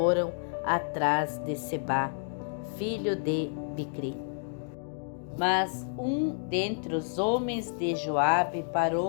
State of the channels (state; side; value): silent; right; digital silence